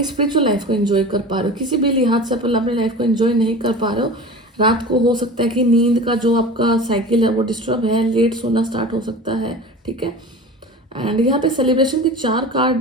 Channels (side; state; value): both; normal; correlation 0.35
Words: स्पिरिचुअल लाइफ को एंजॉय कर पा रहे हो। किसी भी लिहाज से आप अपनी लाइफ को एंजॉय नहीं कर पा रहे हो। रात को हो सकता है कि नींद का जो आपका साइकिल है वो डिस्टर्ब है, लेट सोना स्टार्ट हो सकता है, ठीक है। एंड यहाँ पे सेलिब्रेशन के